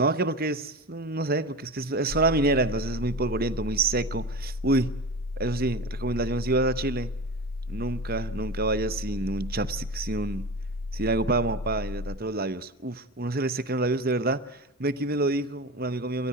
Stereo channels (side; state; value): both; normal; correlation 0.29